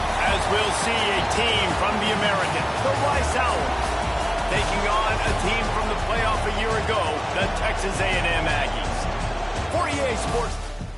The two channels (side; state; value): both; identical; correlation 1.00